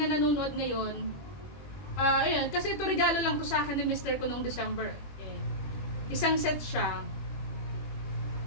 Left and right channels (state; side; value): late; right; 21 ms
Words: nanonood ngayon, ayun, kasi ito regalo lang to sa akin ni Mr. ko noong December. Okay. Isang set siya.